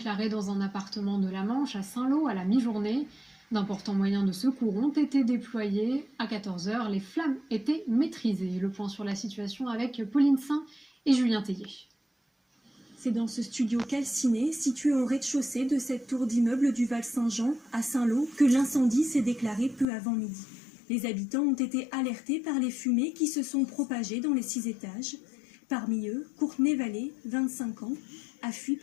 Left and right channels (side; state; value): right; drops out; at 19.9 s